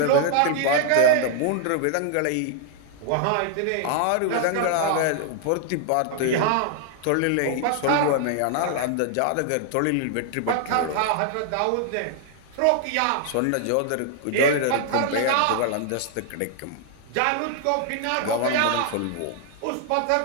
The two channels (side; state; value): both; different; correlation 0.00